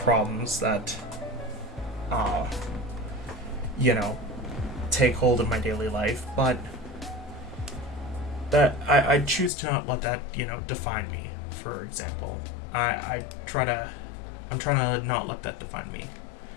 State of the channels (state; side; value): drops out; right; at 9.5 s